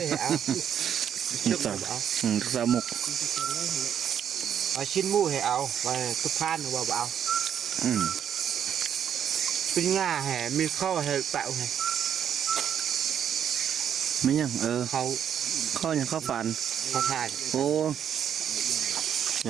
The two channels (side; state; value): left; quieter; 8.9 dB